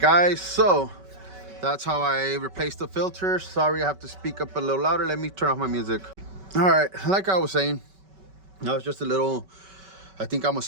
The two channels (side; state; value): left; late; 5.3 ms